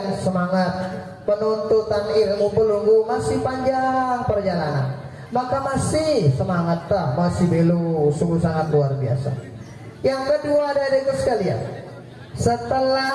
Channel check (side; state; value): both; identical; correlation 1.00